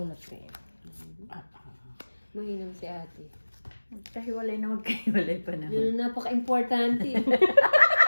ko yun. Mahinam si ate. Magkahiwalay na magkahiwalay pa naman. Yun ang napaka-importante.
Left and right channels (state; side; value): inverted; both; correlation -1.00